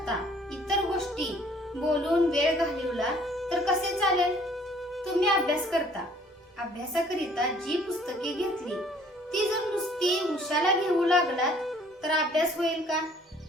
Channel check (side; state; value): both; normal; correlation 0.58